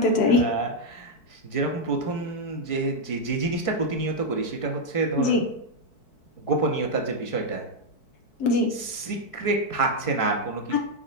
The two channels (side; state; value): right; late; 4.6 ms